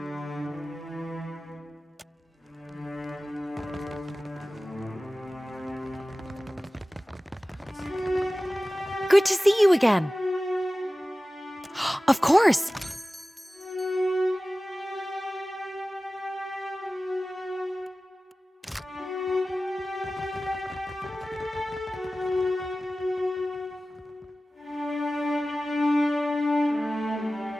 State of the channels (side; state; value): both; normal; correlation 0.96